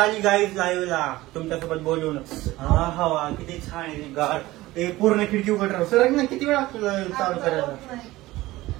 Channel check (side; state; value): left; quieter; 18.0 dB